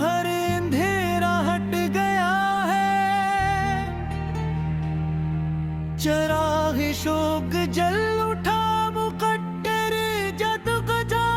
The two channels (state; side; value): identical; both; correlation 1.00